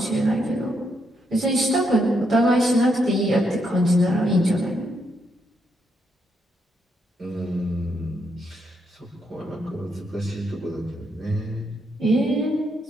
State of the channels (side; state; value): both; normal; correlation 0.78